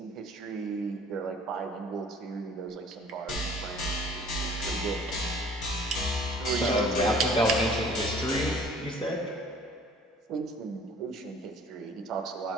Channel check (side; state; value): both; normal; correlation 0.52